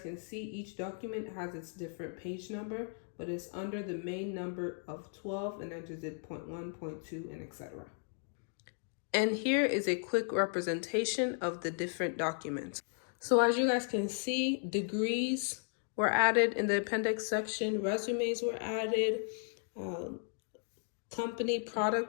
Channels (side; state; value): right; silent; 54 dB below the other